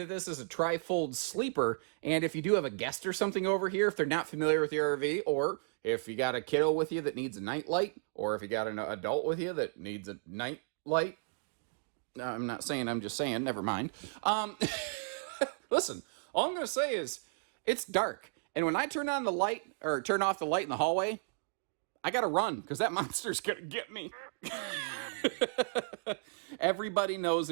this is a tri-fold sleeper, and if you do have a guest or something over here, if they're not familiar with your RV, or if you got a kiddo with you that needs a night light, or if you got an adult with you that needs a night light, I'm not saying, I'm just saying, never mind. Listen, all I'm going to say is, it's dark, and when I turn on the light, or turn off the light in the hallway, I gotta run, because that monster's gonna get me. Everybody knows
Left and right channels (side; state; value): left; silent; digital silence